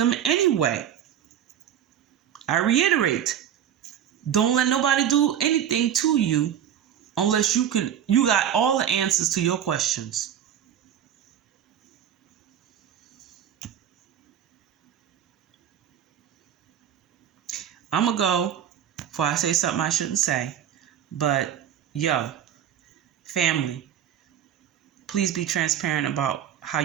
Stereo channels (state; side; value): quieter; left; 9.8 dB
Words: anyway. I reiterate, don't let nobody do anything to you unless you got all the answers to your questions. I'm going to go before I say something I shouldn't say. But, family, please be transparent about how